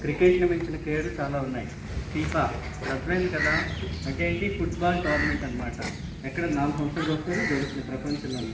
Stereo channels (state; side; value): identical; both; correlation 1.00